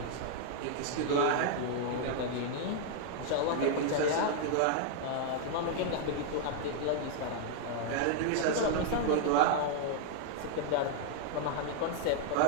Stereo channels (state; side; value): different; both; correlation 0.00